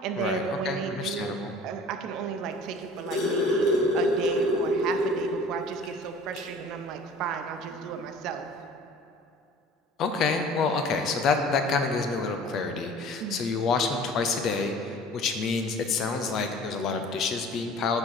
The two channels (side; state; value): both; normal; correlation 0.46